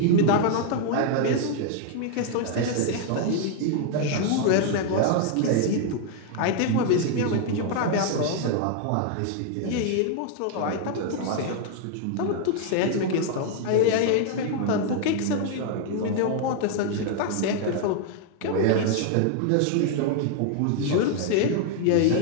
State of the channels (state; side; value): different; both; correlation 0.00